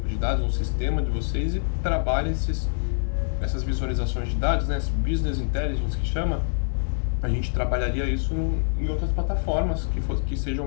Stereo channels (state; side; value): silent; right; 59 dB below the other